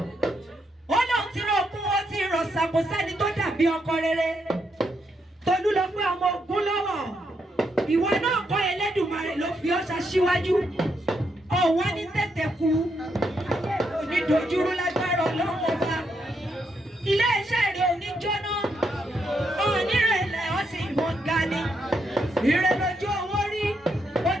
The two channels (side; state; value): both; normal; correlation 0.79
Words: Ó lóun ti rọ ogún ó ti rọ̀ ṣàkó sẹ́ni tó dàbí ọkọ rere. Tolú lọ pé ọmọ ogun lọ́wọ́. Ìwọ náà kọ́ Ẹlẹ́dùmarè ló fi ọ́ ṣaṣíwájú. Ọ̀wá ní tètè kú. Onídojúrú lágbára Ọlọ́run ọba. Ilé iṣẹ́ rẹ̀ ò ní jóná. Onírẹ̀lẹ̀ ó sì mọ̀ ga ni. Ire lójú owó rí.